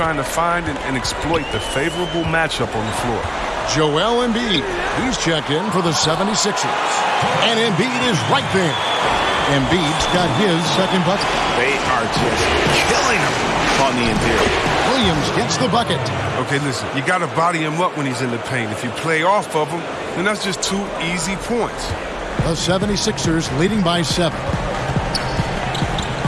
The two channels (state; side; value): identical; both; correlation 1.00